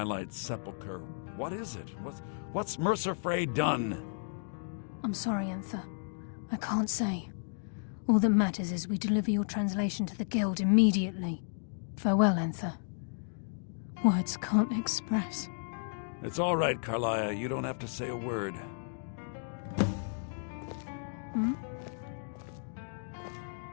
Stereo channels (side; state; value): right; silent; digital silence